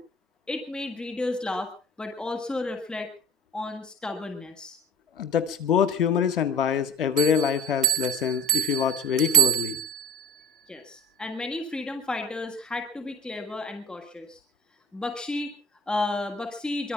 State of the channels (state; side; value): normal; both; correlation 0.38